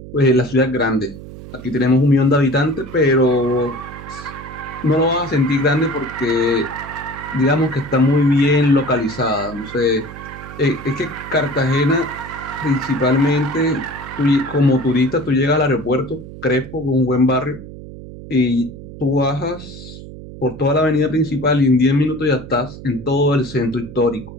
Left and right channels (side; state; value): right; noise; hum, 14 dB below the sound